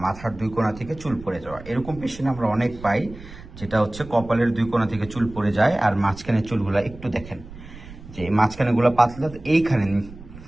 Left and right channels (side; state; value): right; noise; rumble, 16 dB below the sound